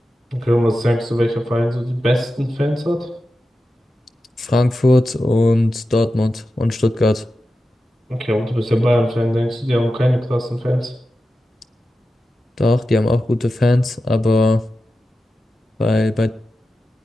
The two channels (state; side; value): normal; both; correlation 0.92